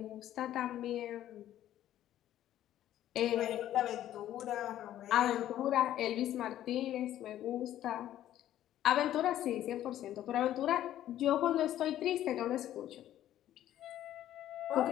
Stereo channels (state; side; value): quieter; right; 12.4 dB